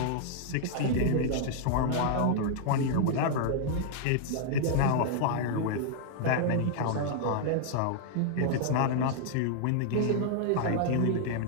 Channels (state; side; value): different; both; correlation -0.01